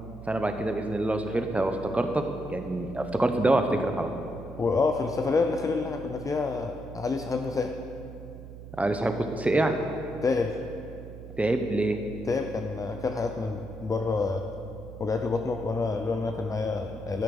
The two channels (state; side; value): noise; right; hum, 13 dB below the sound